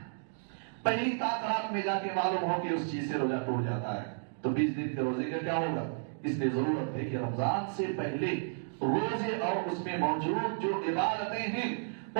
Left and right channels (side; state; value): left; silent; digital silence